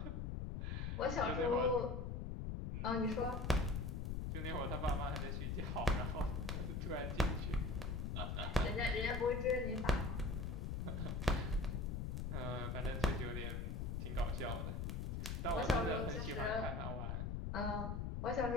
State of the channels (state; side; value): noise; left; rumble, 2 dB below the sound